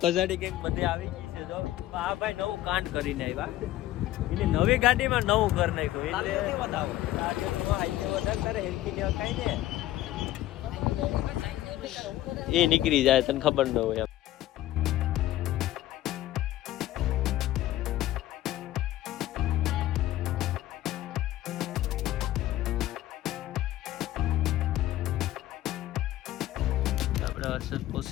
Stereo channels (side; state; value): right; quieter; 14.7 dB